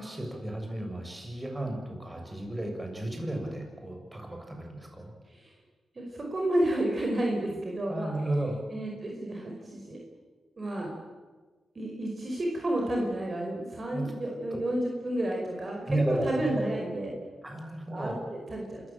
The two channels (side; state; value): both; normal; correlation 0.92